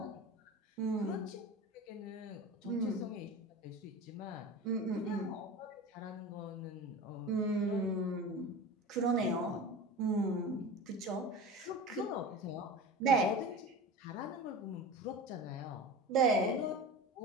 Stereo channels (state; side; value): normal; both; correlation 0.31